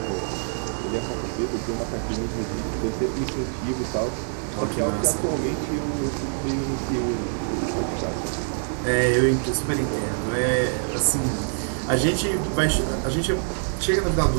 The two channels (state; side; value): silent; left; digital silence